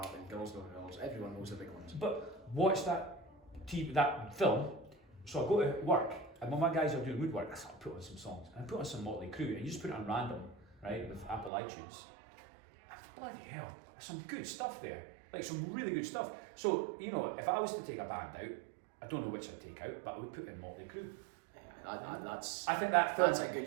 and Girls Know Girls. Everyone knows the big ones. But watch that film. So I go to work, and when my guys are doing woodwork, I start put on some songs. And I put on some Motley Crue, and you just put it on random, right, with Apple iTunes. And bloody hell, there's some good stuff there. Like some really good stuff. So, you know, if I was to take a band out, I don't know which I'd take out, but I would put in Motley Crue. I think that film, that's a good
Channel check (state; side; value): drops out; left; at 11.5 s